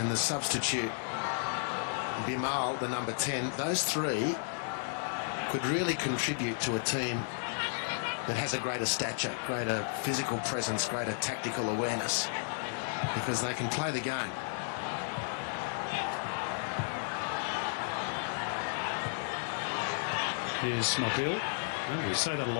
the substitute Bimal, the number 10, those 3 could really contribute to a team that has a greater stature, greater physical presence, greater tactical awareness, because they can play the game. Here's Mobile. Well, we say that a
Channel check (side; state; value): right; silent; digital silence